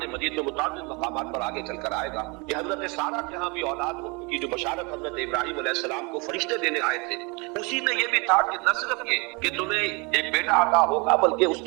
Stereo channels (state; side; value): quieter; left; 29.4 dB